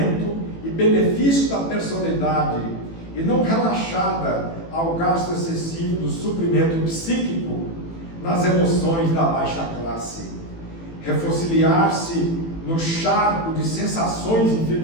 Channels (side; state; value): right; late; 18 ms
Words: e benefício da personalidade, e não relaxada ao gasto excessivo do suprimento psíquico nas emoções da baixa classe. Refossiliar-se no charco de sensações